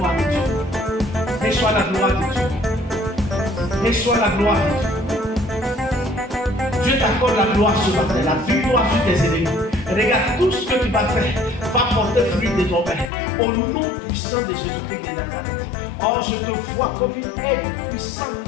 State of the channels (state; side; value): drops out; right; at 13.1 s